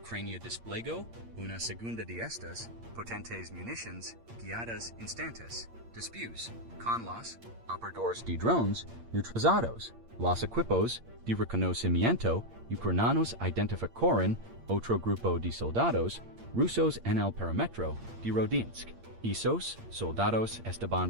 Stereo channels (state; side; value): late; left; 8.7 ms